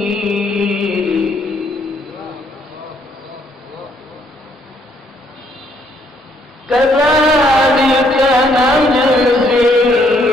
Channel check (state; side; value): normal; both; correlation 0.69